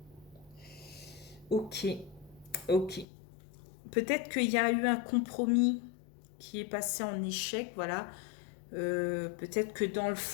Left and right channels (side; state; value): right; drops out; at 3.1 s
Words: Ok, ok. Peut-être qu'il y a eu un compromis qui est passé en échec, voilà. Peut-être que dans le